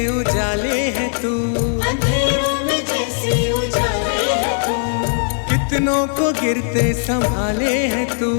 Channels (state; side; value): silent; right; 64 dB below the other